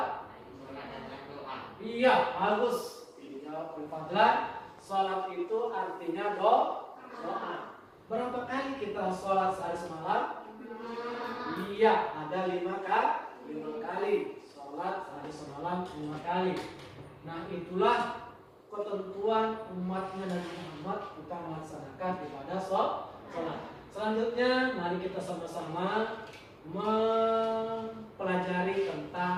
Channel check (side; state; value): both; identical; correlation 1.00